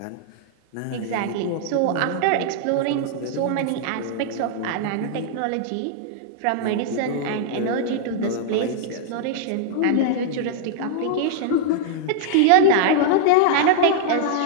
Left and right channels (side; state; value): both; different; correlation -0.01